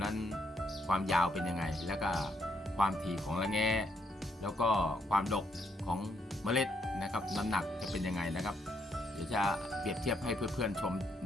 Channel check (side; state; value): both; normal; correlation 0.74